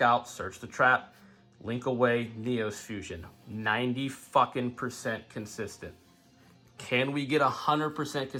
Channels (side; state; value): both; identical; correlation 1.00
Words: out, search the trap, link away, Neos fusion. 90% consistent. Can we get 100%